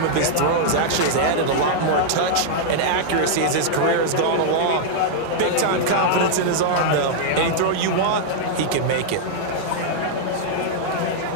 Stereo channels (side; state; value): both; different; correlation -0.01